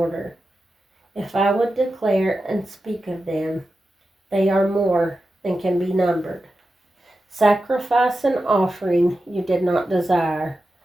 If I would declare and speak of them, they are more than can be numbered. Sacrifice and offering you did not desire,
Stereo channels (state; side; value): normal; both; correlation 0.91